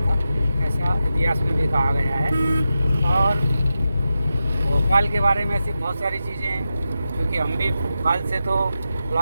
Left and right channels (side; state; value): both; inverted; correlation -0.90